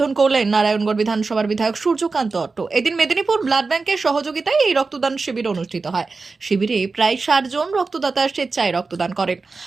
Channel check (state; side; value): quieter; left; 4.1 dB